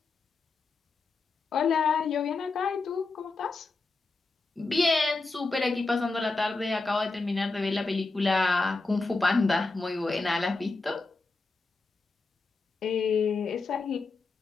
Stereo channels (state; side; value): quieter; right; 3.7 dB